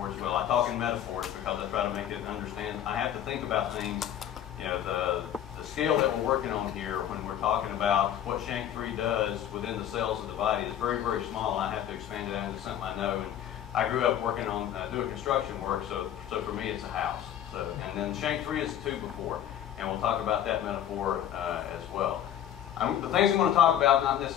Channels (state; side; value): quieter; right; 10.5 dB